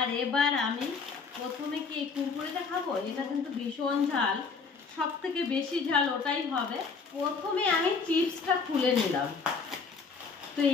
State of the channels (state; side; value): quieter; right; 5.0 dB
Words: এবার আমি প্রথমে কি এই কুরকুরেটা খাবো, এটা কিন্তু ভীষণ ঝাল, সব থেকে বেশি ঝাল ওটাই হবে। প্রথমে আমি চিপসটা খুলে নিলাম, তো